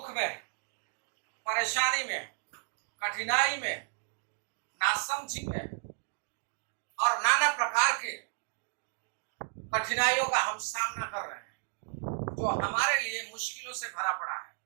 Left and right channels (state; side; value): silent; left; 56 dB below the other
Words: में, परेशानी में, कठिनाई में, नासमझी में और नाना प्रकार के कठिनाइयों का हम सामना कर रहे हैं जो हमारे लिए मुश्किलों से भरा पड़ा है।